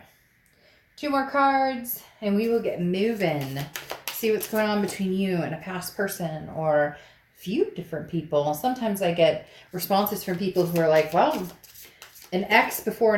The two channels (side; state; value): both; identical; correlation 1.00